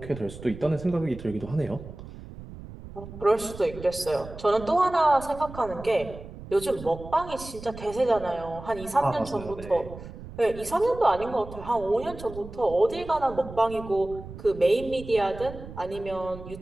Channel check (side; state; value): right; noise; rumble, 14 dB below the sound